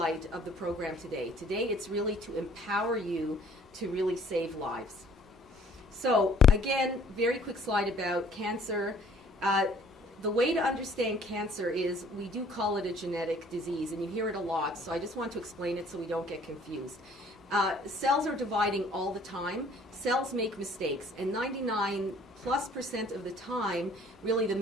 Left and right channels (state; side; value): normal; both; correlation 0.57